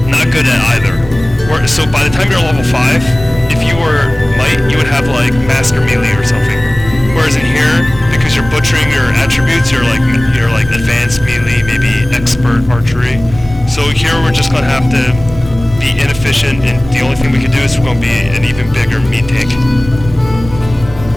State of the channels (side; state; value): right; noise; rumble, 14 dB below the sound